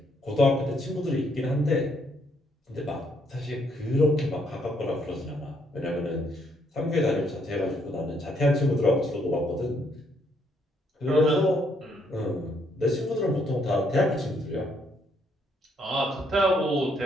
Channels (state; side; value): normal; both; correlation 0.71